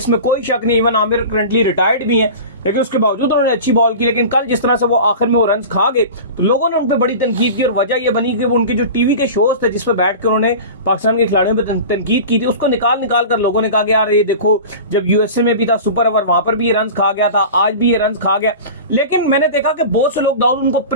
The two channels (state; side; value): inverted; both; correlation -0.33